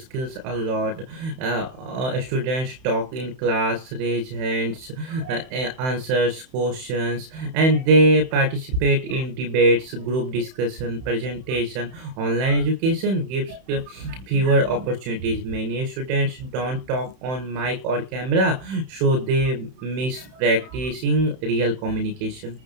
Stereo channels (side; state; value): left; late; 31 ms